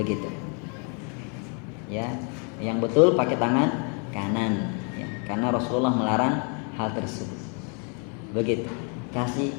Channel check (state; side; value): quieter; right; 38.0 dB